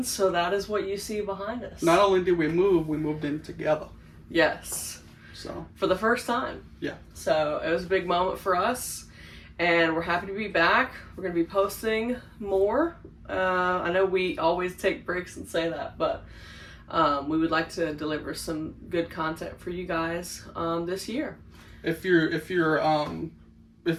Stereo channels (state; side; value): identical; both; correlation 1.00